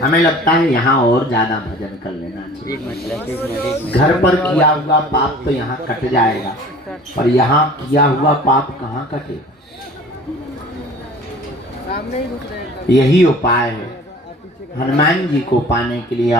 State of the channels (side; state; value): both; normal; correlation 0.46